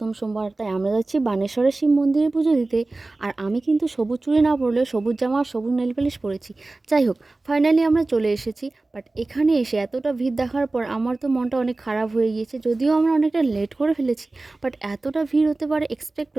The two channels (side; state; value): left; quieter; 3.1 dB